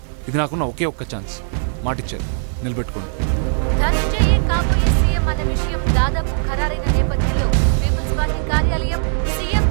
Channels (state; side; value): silent; left; digital silence